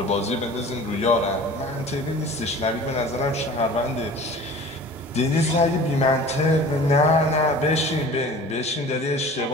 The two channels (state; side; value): normal; both; correlation 0.42